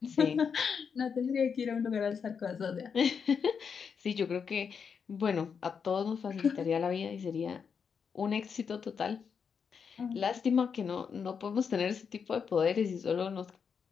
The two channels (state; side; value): quieter; right; 6.4 dB